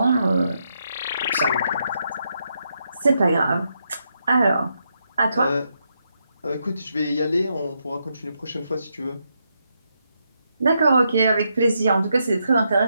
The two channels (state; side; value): inverted; both; correlation -0.81